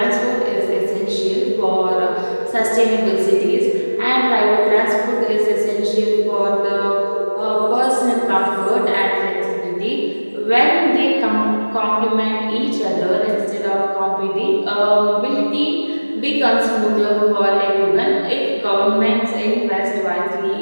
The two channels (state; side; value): inverted; both; correlation -1.00